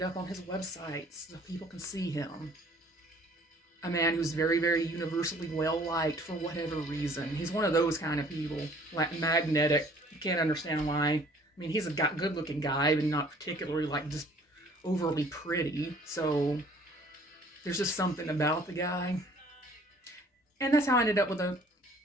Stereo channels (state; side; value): normal; both; correlation 0.55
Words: up on his website so people can see him. A man who's very, very universally well-liked for whatever reason. He's one of those kind of people, like magnetic. You can't understand why. I mean, he's a good-looking guy, but not particularly, just overly pretty. So there's just something about the guy. And that's how I ended up with the